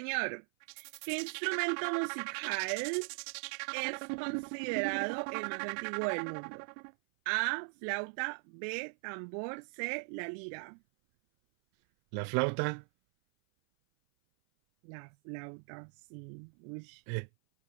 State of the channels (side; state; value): left; silent; 52 dB below the other